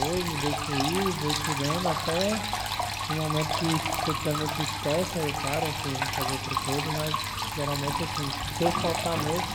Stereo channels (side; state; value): both; identical; correlation 1.00